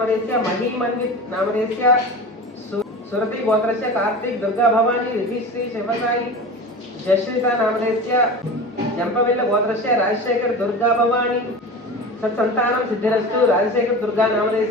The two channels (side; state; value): both; normal; correlation 0.31